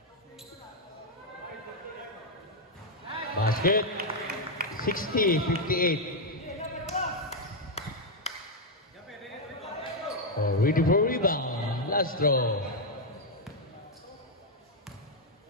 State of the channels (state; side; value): normal; both; correlation 0.00